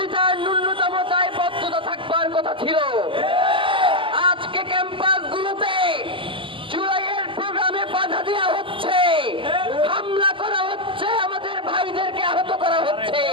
তার ন্যূনতম দায়বদ্ধতা থাকবার কথা ছিল। আজকে ক্যাম্পাসগুলোতে জুলাইয়ের প্রোগ্রামে বাধা দেওয়া হচ্ছে, হামলা করা হচ্ছে, আমাদের ভাইদেরকে আহত করা হচ্ছে।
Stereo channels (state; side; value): late; left; 0.25 ms